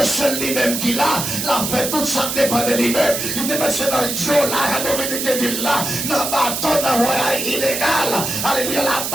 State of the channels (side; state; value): right; noise; hiss, 3 dB below the sound